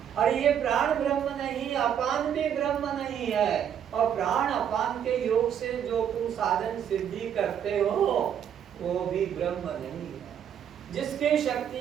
अरे ये प्राण ब्रह्म नहीं, अपान भी ब्रह्म नहीं है, और प्राण अपान के योग से जो तुम साधन सिद्धि करते हो वो भी ब्रह्म नहीं है। जिसके शक्ति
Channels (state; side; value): quieter; left; 8.9 dB